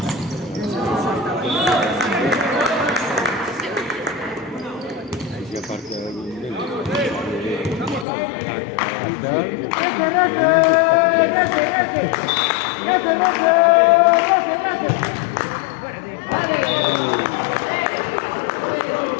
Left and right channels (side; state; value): right; drops out; at 8.1 s